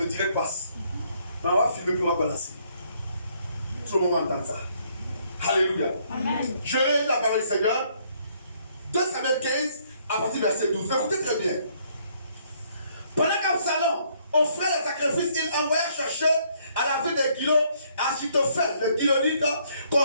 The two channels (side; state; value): both; inverted; correlation -0.67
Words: direct passe. Mais on va filmer puis on va balancer. Tout le monde va entendre ça. Alléluia. Amen. Je lis la parole du Seigneur. 2 Samuel 15 à partir du verset 12. Écoutez très bien. Pendant qu'Absalom offrait les sacrifices, il envoya chercher à la ville de Gilo Achitophel, le Gilonite,